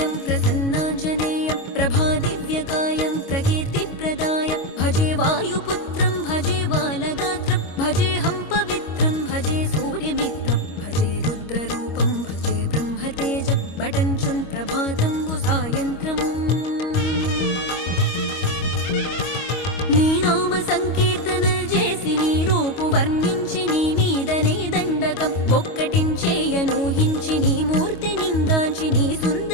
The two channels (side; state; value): right; late; 25 ms